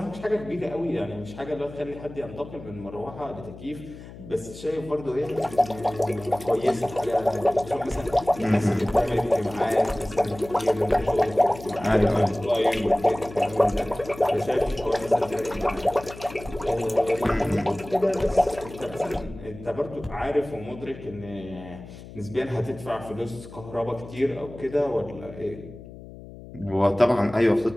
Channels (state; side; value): noise; left; hum, 16 dB below the sound